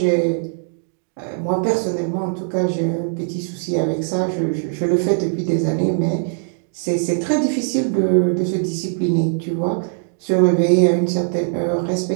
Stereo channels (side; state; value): left; silent; digital silence